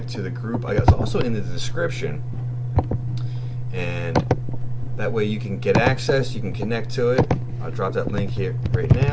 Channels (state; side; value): identical; both; correlation 1.00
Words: to the group. It's also in the description, and that way you can get access. You can connect to it. I'll drop that link here right